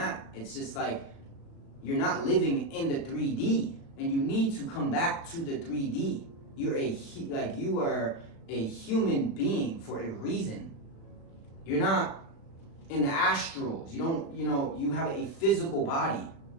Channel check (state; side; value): late; right; 36 ms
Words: It's just like you're not living in the 3D, and you need to come back to the 3D. You are a human being for a reason. You're not in the astrals. You have a physical body.